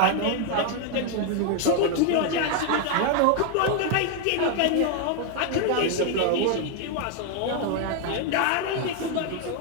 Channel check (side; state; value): both; different; correlation 0.01